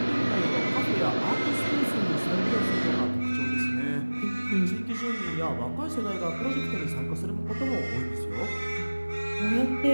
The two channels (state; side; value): inverted; both; correlation -1.00